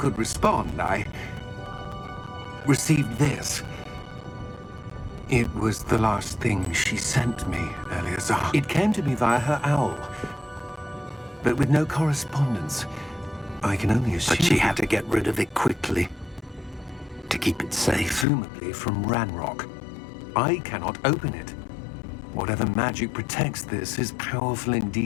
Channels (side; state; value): right; drops out; at 18.2 s